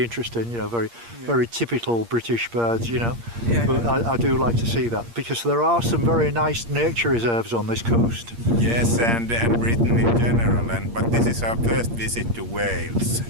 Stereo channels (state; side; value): late; left; 8.6 ms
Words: interesting, very typical British birds, but I do like to see that, because there are some very nice nature reserves on this coast. Yes, and Britain in general, but this is our first visit to Wales,